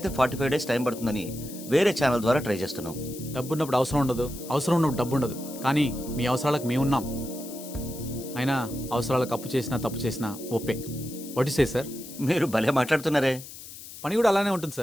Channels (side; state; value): left; noise; hiss, 14 dB below the sound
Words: 45 days టైం పడుతుందని వేరే ఛానల్ ద్వారా ట్రై చేస్తున్నాం. డబ్బు ఉన్నప్పుడు అవసరం ఉండదు, అవసరం ఉన్నప్పుడు డబ్బు ఉండదు. కానీ మీ అవసరాలకు మేము ఉన్నాం. అయినా అవసరాలకు అప్పు చేసినా తప్పు చేసినా ఓపే. What is a sir? మీరు భలే మాట్లాడుతున్నారే. పని కూడా అలానే ఉంటుంది